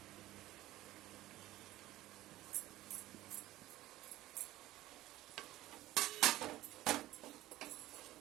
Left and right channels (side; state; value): left; quieter; 15.9 dB